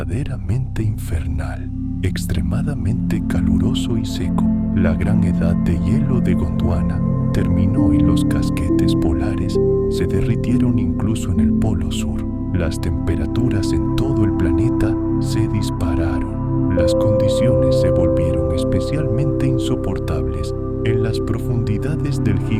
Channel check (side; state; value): both; identical; correlation 1.00